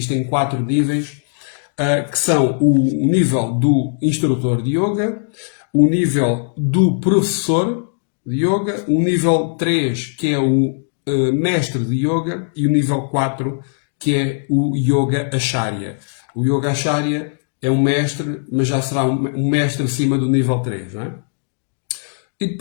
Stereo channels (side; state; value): right; silent; digital silence